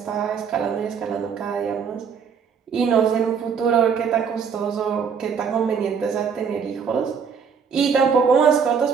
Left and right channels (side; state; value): left; quieter; 6.5 dB